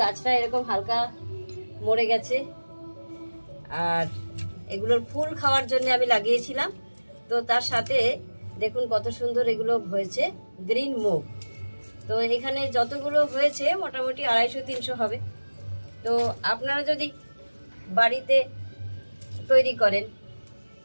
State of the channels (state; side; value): inverted; both; correlation -1.00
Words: গাছটা এরকম হালকা মরে গেছে। আর এগুলোর ফুল খাওয়ার জন্য আমি লাগিয়েছিলাম। তো তার সাথে দেখুন কত সুন্দর এগুলো হয়েছে, গ্রিন মুগ। তো এখানে যতগুলো হয়েছে মোটামুটি 250-300 হবে। তো আপনারা যদি বাড়িতে তৈরি করেন,